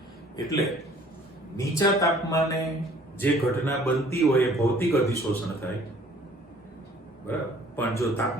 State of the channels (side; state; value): both; normal; correlation 0.55